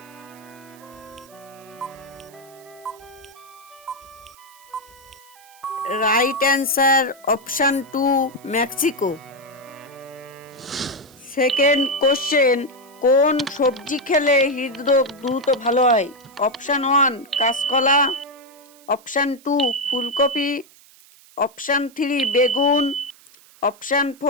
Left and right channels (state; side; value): noise; right; hiss, 25 dB below the sound